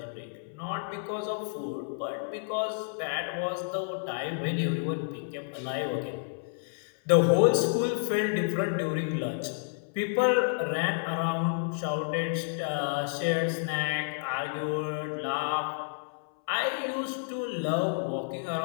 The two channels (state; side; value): silent; right; 58 dB below the other